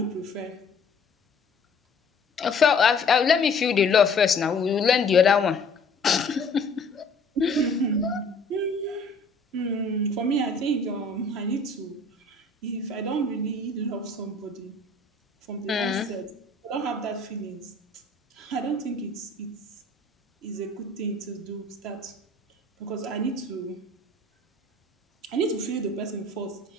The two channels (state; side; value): quieter; right; 3.3 dB